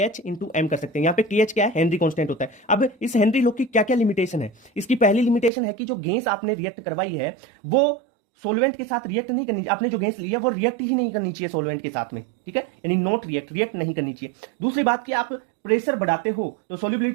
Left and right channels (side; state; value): left; drops out; at 5.5 s